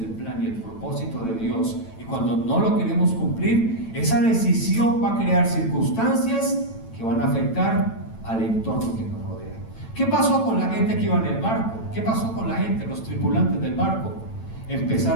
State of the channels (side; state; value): right; late; 9.0 ms